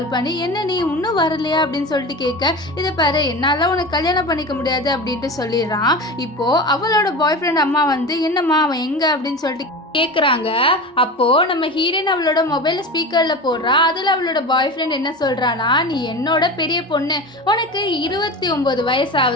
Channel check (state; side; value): normal; both; correlation 0.29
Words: பண்ணி, என்ன நீ இன்னும் வரலையா அப்படின்னு சொல்லிட்டு கேட்க, இதை பாரு என்னால் உனக்கு கல்யாணம் பண்ணிக்க முடியாது அப்படின்ட்டு சொல்லிடுறான். இப்போது அவளோட பாய் ஃப்ரெண்ட் அம்மா என்னம்மா அவன் எங்கே அப்படின்னு சொல்லிட்டு கேட்குறாங்க. அப்போது நம்ம ஹீரோயின் அவளோட மொபைலில் ஸ்பீக்கரில் போடுறா. அதில் அவளோட பாய் ஃப்ரெண்ட் என்ன சொல்கிறான்னா, நீ என்னோட பெரிய பொண்ணு, உனக்கு 29 வயசு